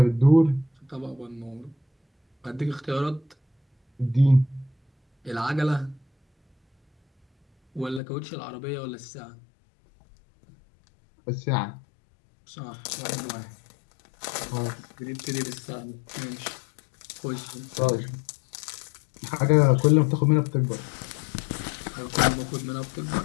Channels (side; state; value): right; drops out; at 8.0 s